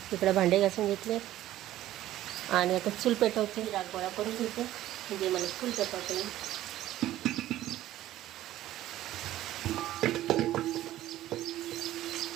इकडं भांडे घासून घेतले आणि आता चूल पेटवते. रागोळा करून घेते म्हणजे मला चूल पेटवते.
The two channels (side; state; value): left; quieter; 14.0 dB